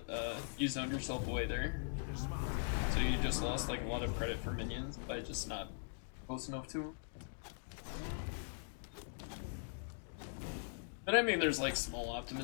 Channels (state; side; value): silent; right; digital silence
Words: you zoned yourself away there. So you just lost like a lot of credit for minions by just not close enough to them. But I mean, there's like small